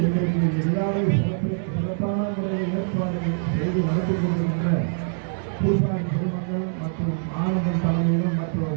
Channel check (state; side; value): silent; left; 63 dB below the other